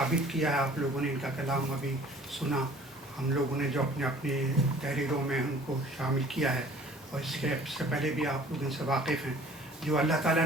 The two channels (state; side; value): normal; both; correlation 0.51